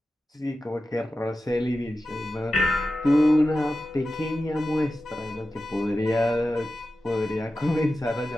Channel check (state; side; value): normal; both; correlation 0.93